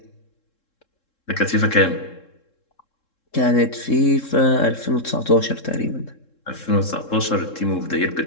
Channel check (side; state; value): right; late; 3.7 ms